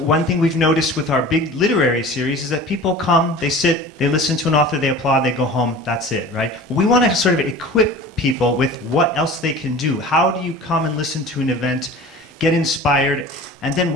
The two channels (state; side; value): normal; both; correlation 0.39